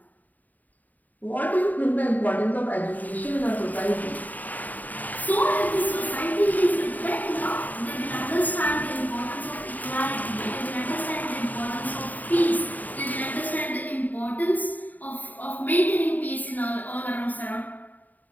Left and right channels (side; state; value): right; late; 0.081 ms